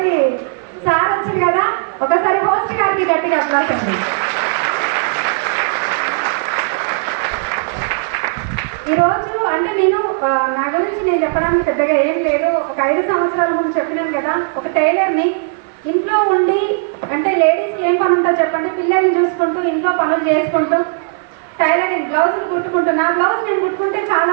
సార్ వచ్చింది కదా. ఒకసారి హోస్ట్ గారికి గట్టిగా అప్లాస్ అండి. ఈరోజు అంటే నేను నా గురించి నేను చెప్పడానికి పెద్దగా ఏం లేదు. ఒక 5 సంవత్సరాల ముందు చెప్పినాను కదా, ఒక టైలర్ని. ఇంట్లో ఉండి అంటే లేడీస్కి ఏం పని ఉంటుందో చెప్పండి, పిల్లల్ని చూసుకుంటూ ఇంట్లో పనులు చేసుకుంటూ టైలరింగ్ బ్లౌజులు కుట్టుకుంటున్నా. బ్లౌజ్ నేను కుట్టుకుంటే చాలా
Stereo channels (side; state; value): left; silent; 62 dB below the other